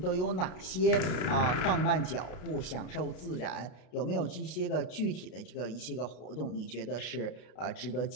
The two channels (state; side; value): late; right; 33 ms